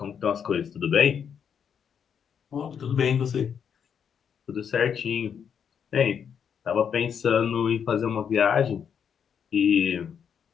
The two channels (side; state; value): right; quieter; 7.6 dB